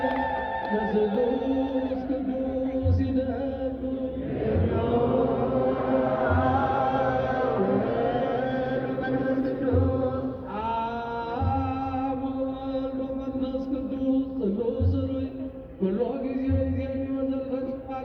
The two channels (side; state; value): both; identical; correlation 1.00